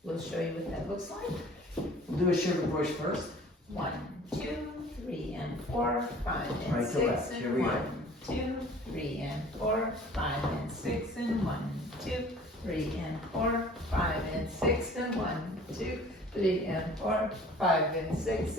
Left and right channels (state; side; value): normal; both; correlation 0.49